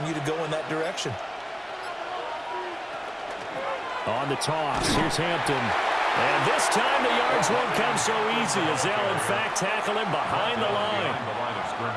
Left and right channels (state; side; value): identical; both; correlation 1.00